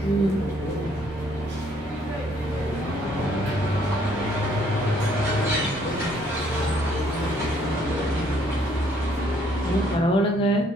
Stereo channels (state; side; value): normal; both; correlation 0.65